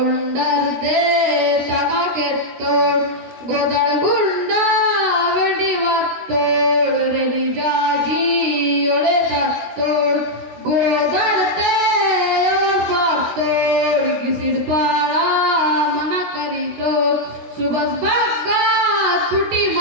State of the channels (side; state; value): left; late; 16 ms